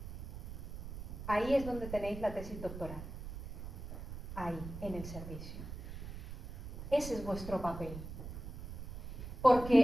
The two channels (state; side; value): noise; right; rumble, 9 dB below the sound